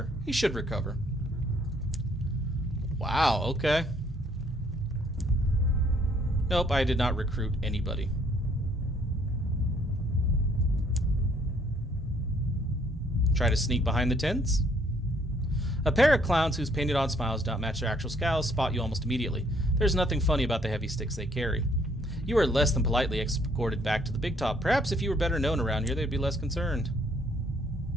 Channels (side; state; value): both; normal; correlation 0.65